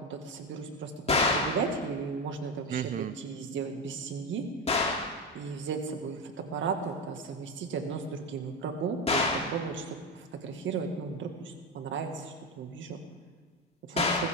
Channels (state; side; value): normal; both; correlation 0.13